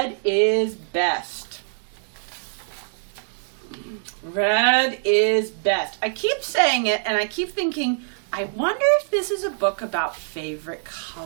is best. Red is best. I keep saying it, and I keep thinking, I wonder if this is a book about favorite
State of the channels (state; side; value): silent; left; digital silence